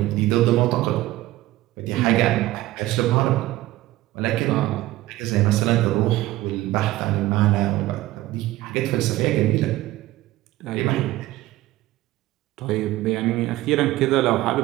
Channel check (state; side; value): quieter; left; 16.8 dB